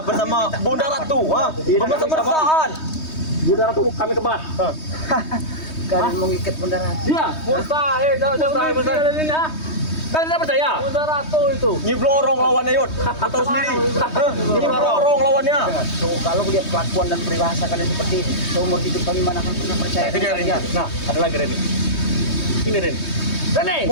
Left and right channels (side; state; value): right; late; 3.2 ms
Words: Bunda Ratu, bermesra-mesraan. Bunda Ratu kami kebat. Kalian mengikat Bunda Ratu. Iya, mustahil. Mustahil ini ah. Kalian tidak percaya? Bunda Ratu itu. Nyiblorong lawannya Yud. Kau tahu sendiri. Nyiblorong lawannya. Tuh, kalau lihat kelakuan dan peribahasa kalian seperti ini, seumur hidup kami mana akan pernah percaya. Itu dia Reni. kalian. Nah, ada lagi Reni. Ini Reni. Reni.